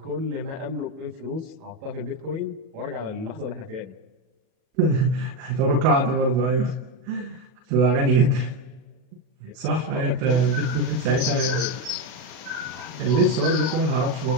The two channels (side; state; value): left; late; 37 ms